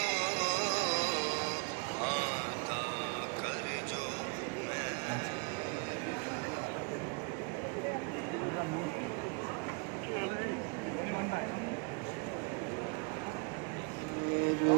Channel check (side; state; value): left; quieter; 32.8 dB